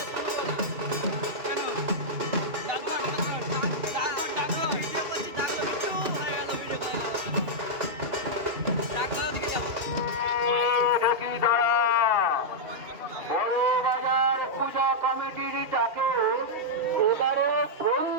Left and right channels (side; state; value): left; late; 2.6 ms